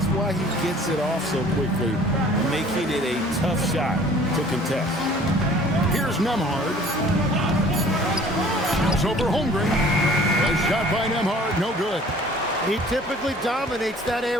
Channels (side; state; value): both; normal; correlation 0.51